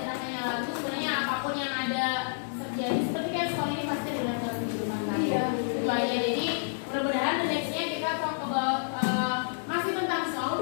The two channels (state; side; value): silent; right; digital silence